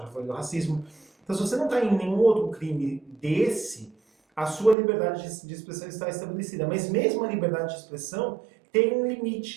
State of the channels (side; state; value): left; drops out; at 4.8 s